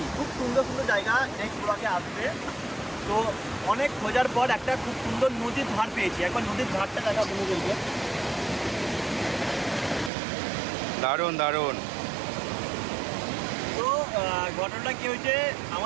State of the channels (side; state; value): left; drops out; at 10.1 s